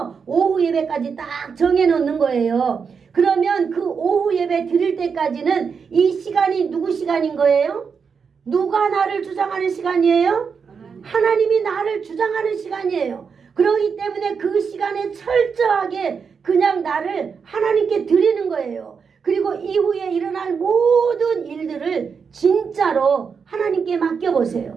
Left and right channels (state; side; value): quieter; left; 6.0 dB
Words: 오후 예배까지 딱 정해놓는 거예요. 그러면 그 오후 예배 드릴 때까지는 이 시간이 누구 시간인 거예요? 누가 나를 주장하는 시간이에요? 하나님이 나를 주장하는 시간이에요. 그렇기 때문에 그 시간에 철저하게 그냥 나를 하나님께 드리는 거예요. 그리고 이후에 일어날 모든 일들을 진짜로 하나님께